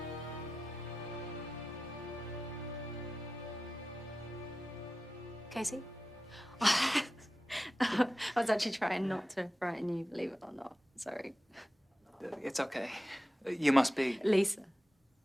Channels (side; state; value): both; normal; correlation 0.94